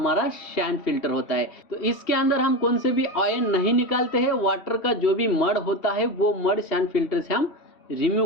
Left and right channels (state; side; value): late; right; 3.1 ms